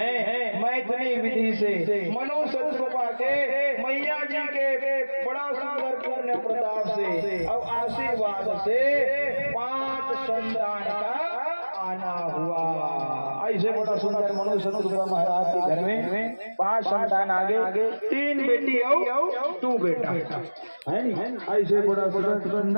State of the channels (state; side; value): inverted; both; correlation -1.00